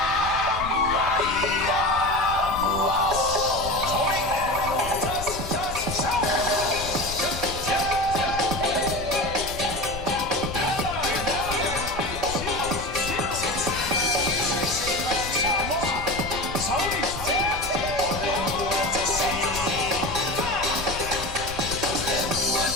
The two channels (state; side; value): noise; left; rumble, 10 dB below the sound